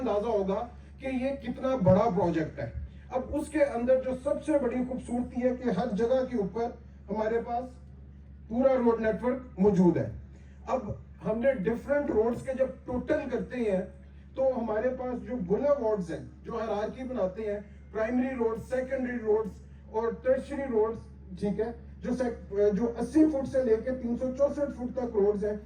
होगा कि ये कितना बड़ा प्रोजेक्ट है। अब उसके अंदर जो सबसे बड़ी खूबसूरती है कि हर जगह के ऊपर हमारे पास पूरा रोड नेटवर्क मौजूद है। अब हमने डिफरेंट रोड्स के जब टोटल करते हैं तो हमारे पास जो बुलेवार्ड्स हैं, जो हायरार्की बनाते हैं, प्राइमरी रोड, सेकेंडरी रोड्स और टर्शियरी रोड्स, ठीक है, जो 80 फुट से लेकर 364 फुट तक रोड्स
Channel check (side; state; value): both; identical; correlation 1.00